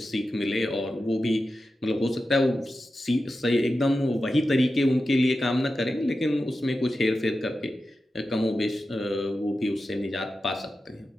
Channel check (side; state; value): both; normal; correlation 0.92